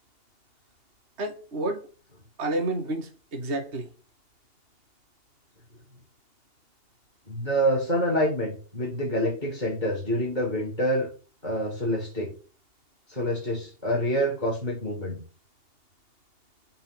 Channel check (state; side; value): late; left; 2.8 ms